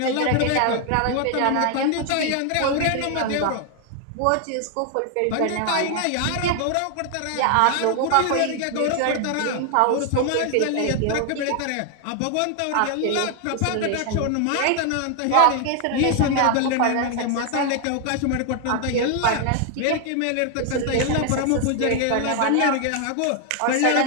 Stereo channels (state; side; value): different; both; correlation 0.00